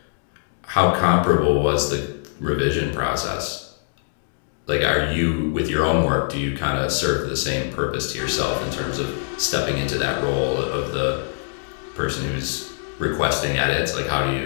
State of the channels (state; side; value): silent; right; digital silence